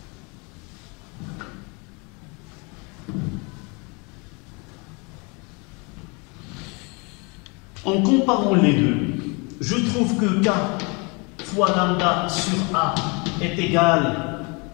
En comparant les deux, je trouve que K fois lambda sur A est égal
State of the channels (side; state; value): right; quieter; 30.5 dB